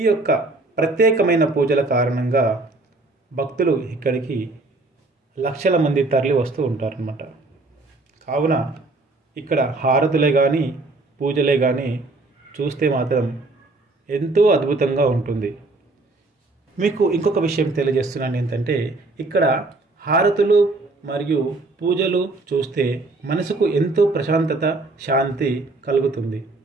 యొక్క ప్రత్యేకమైన పూజల కారణంగా భక్తులు ఇక్కడికి లక్షల మంది తరలి వస్తూ ఉంటారన్నమాట. కావున ఇక్కడ హారతులే కానీ, పూజలే కానీ చూస్తే మాత్రం ఎంతో అద్భుతంగా ఉంటుంది. మీకు ఇంకొక విషయం తెలియజేస్తున్నాను. ఏంటంటే ఇక్కడ హారతులు మరియు పూజలు చూస్తే మనసుకు ఎంతో ప్రశాంతత, శాంతి కలుగుతుంది.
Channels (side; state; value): left; quieter; 3.2 dB